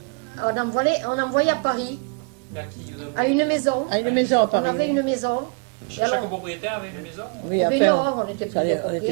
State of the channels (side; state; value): left; quieter; 34.8 dB